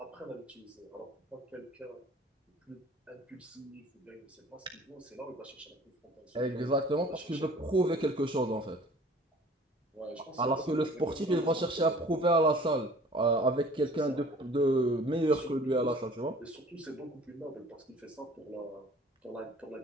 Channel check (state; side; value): normal; both; correlation 0.49